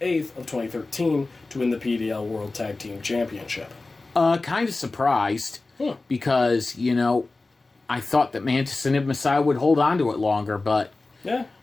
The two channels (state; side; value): quieter; right; 3.4 dB